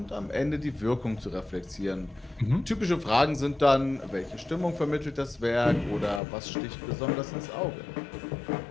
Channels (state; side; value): drops out; right; at 6.2 s